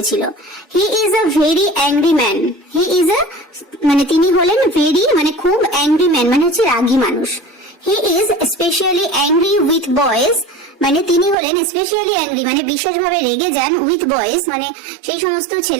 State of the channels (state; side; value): drops out; left; at 11.4 s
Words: He is a very angry man. He is a মানে তিনি হলেন very মানে খুব angry man মানে হচ্ছে রাগী মানুষ। He is especially angry with boys মানে তিনি হলেন স্পেশালি অ্যাংরি মানে বিশেষভাবে রেগে যান, উইথ বয়েজ মানে সেই সমস্ত